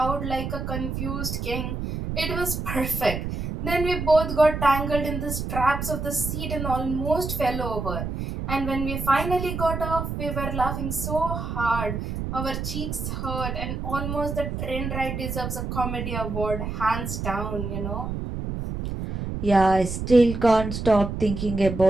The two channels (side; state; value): right; noise; rumble, 4 dB below the sound